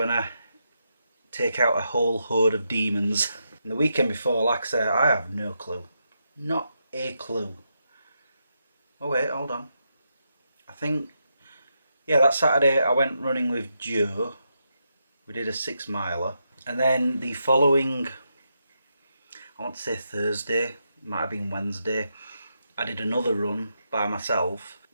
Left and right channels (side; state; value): both; inverted; correlation -0.83